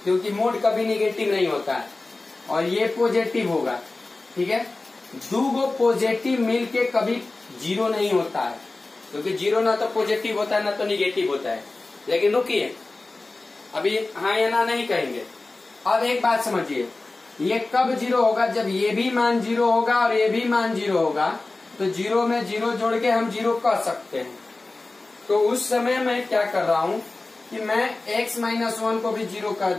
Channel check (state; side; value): quieter; right; 3.3 dB